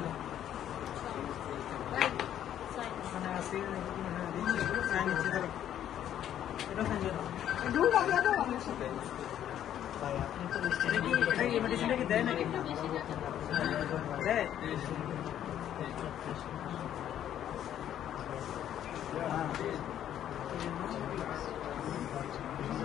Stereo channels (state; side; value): quieter; right; 10.8 dB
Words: মানে আছে sign ইচ্ছে ধরো এটা সাইন ধরো দুটো লাগে তো আমার সাথে এটা কি মেডিসিনটা কি দেয় নাকি দেয়